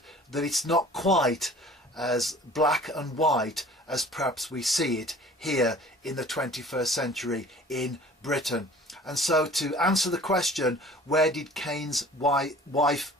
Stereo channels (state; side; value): normal; both; correlation 0.48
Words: that it's not quite as black and white as perhaps we see it here in the 21st century in Britain. And so to answer the question, where did Cain's wife